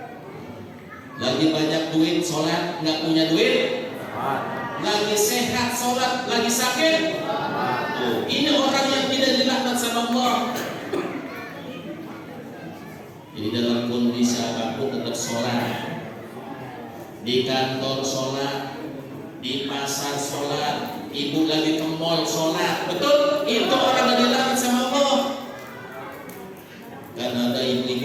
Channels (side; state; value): both; identical; correlation 1.00